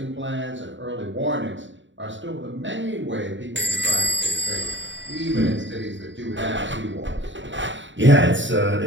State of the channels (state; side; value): late; left; 0.54 ms